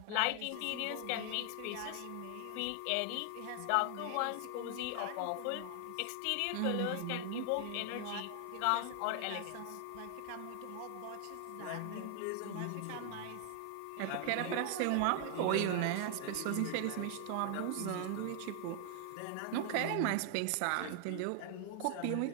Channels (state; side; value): different; both; correlation 0.00